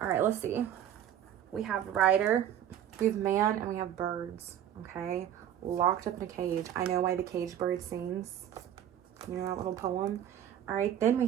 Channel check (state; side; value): quieter; left; 10.4 dB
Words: All right, let's see. We have rider, we have man, and we have birds. Okay, locked up in a cage. I know why the cage bird sings. You know that little poem. All right, then we